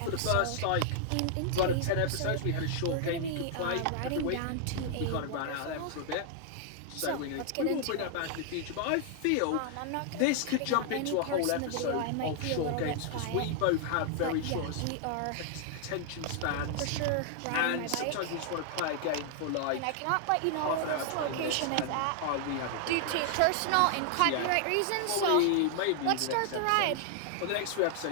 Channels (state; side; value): different; both; correlation 0.00